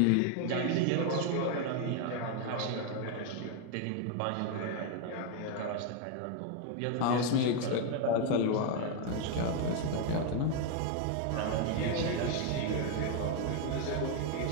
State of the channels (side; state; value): both; different; correlation 0.01